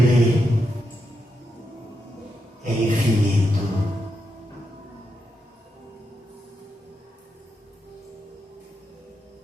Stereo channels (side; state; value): both; normal; correlation 0.84